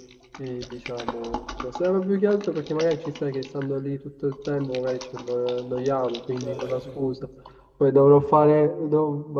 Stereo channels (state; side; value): identical; both; correlation 1.00